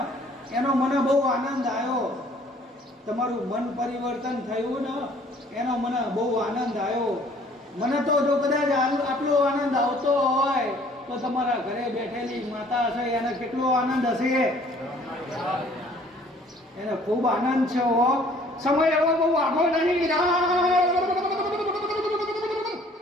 એનો મને બહુ આનંદ આવ્યો. તમારું મન પરિવર્તન થયું ને એનો મને બહુ આનંદ આવ્યો. મને તો જો કદાચ આટલો આનંદ આવતો હોય તો તમારા ઘરે બેઠેલી માતા હશે એને કેટલો આનંદ હશે. એને ખૂબ આનંદ છે. હો સમય એવો બહુ આગો નહીં.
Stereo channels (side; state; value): both; normal; correlation 0.56